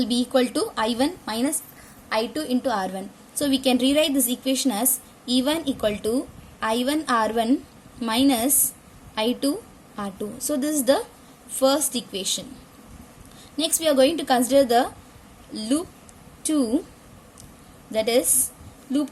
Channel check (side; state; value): both; identical; correlation 1.00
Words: be equal to I1 minus I2 into R1. So we can rewrite this equation as E1 equal to I1 R1 minus I2 R2. So this is the first equation. Next we are going to consider the loop 2, that is